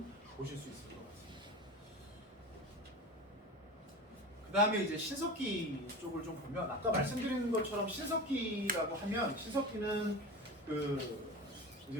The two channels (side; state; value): both; normal; correlation 0.30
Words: 보실 수 있을 것 같습니다. 그 다음에 이제 신석기 쪽을 좀 보면 아까 말씀드린 것처럼 신석기라고 하면 신석기는 그